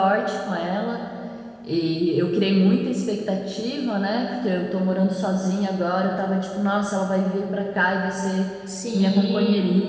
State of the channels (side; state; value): both; identical; correlation 1.00